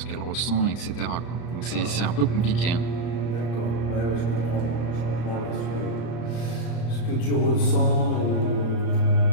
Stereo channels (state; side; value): late; right; 34 ms